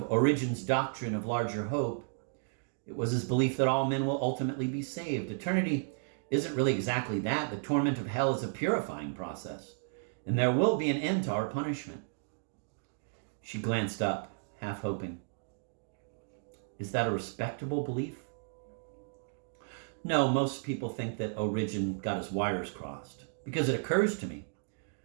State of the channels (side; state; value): left; silent; digital silence